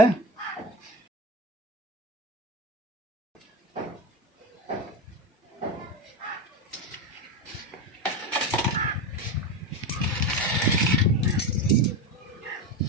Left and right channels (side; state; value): both; normal; correlation 0.20